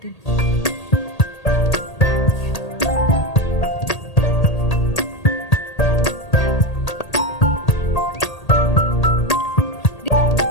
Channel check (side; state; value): right; late; 1.8 ms